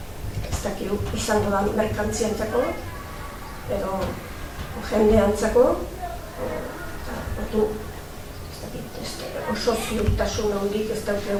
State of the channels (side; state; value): both; identical; correlation 1.00